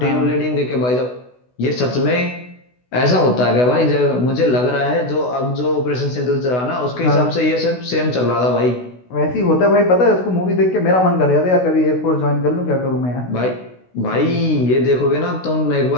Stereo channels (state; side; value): late; right; 16 ms